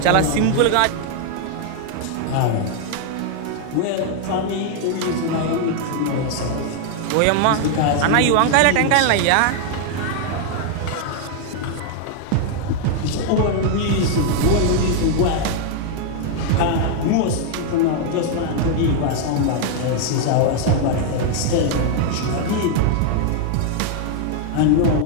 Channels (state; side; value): different; both; correlation 0.00